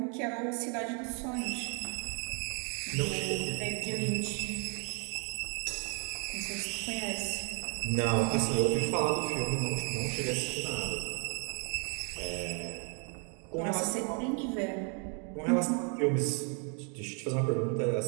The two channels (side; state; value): left; quieter; 38.7 dB